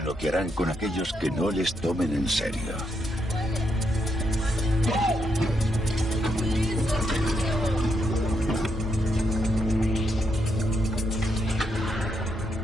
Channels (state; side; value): normal; both; correlation 0.79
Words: lo que harán con aquellos que no les tomen en serio.